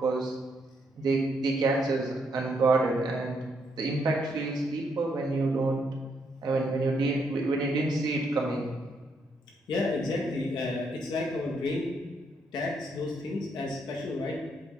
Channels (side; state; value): both; normal; correlation 0.75